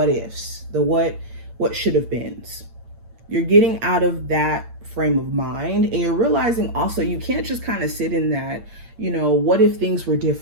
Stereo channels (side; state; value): left; late; 8.8 ms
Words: ifs, the what should have beens. You're getting out of that frame of mind, and you're realizing also you can't just kind of sit in that, what if things were